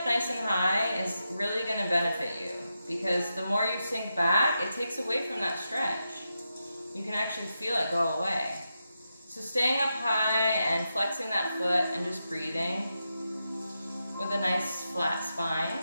nice and high is really going to benefit you because the more you sink back, it takes away from that stretch. You can actually feel it go away. So staying up high and flexing that foot and just breathing with a nice flat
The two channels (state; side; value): inverted; both; correlation -0.87